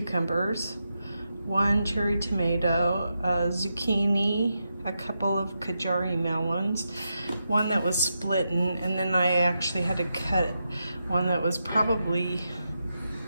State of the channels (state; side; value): inverted; both; correlation -0.86